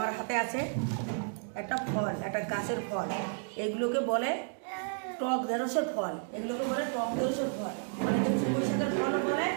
হাতে আছে একটা ফল, একটা গাছের ফল। এগুলোকে বলে টক ঢেঁড়সের ফল, এগুলোকে বলে টক ঢেঁড়সের ফল, মানে বৈশাখের ফলও বলে,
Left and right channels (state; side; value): silent; left; 56 dB below the other